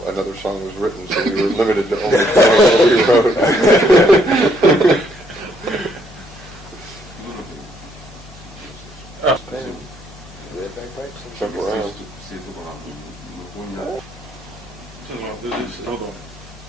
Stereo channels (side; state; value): both; normal; correlation 0.70